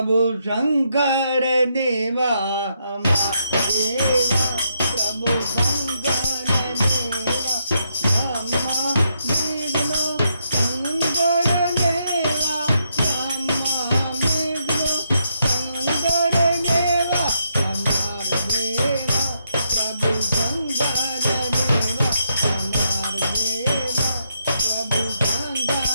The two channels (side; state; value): both; inverted; correlation -0.78